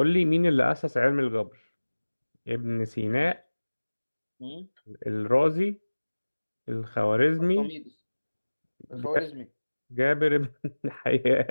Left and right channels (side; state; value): both; inverted; correlation -1.00